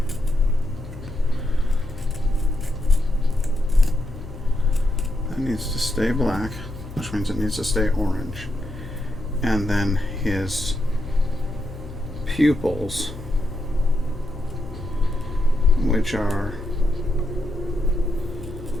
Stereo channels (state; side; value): noise; left; hum, 13 dB below the sound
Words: That needs to stay black, which means it needs to stay orange. And then his pupils, which are